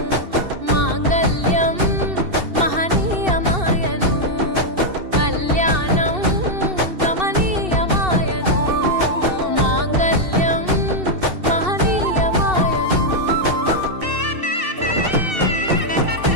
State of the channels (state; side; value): late; left; 2.7 ms